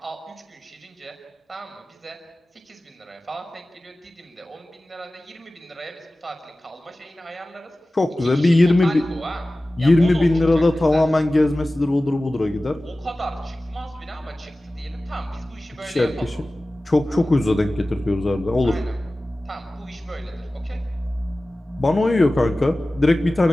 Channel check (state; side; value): normal; both; correlation 0.97